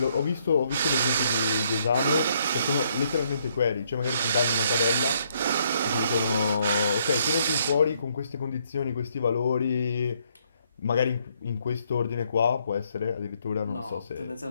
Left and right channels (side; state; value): both; inverted; correlation -0.70